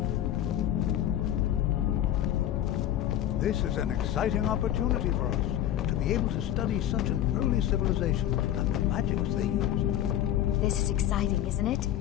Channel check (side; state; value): right; quieter; 11.8 dB